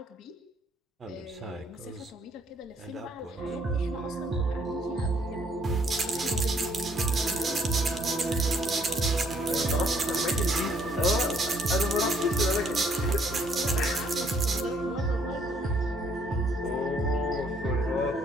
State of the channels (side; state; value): both; normal; correlation 0.66